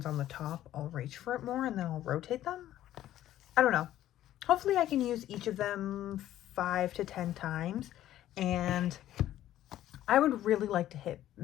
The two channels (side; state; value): right; quieter; 13.0 dB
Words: on the top, I'll reach for it more and then I'll rotate them. I don't know. Hopefully I can use each of them 5 to 10 times, and I would really like to hit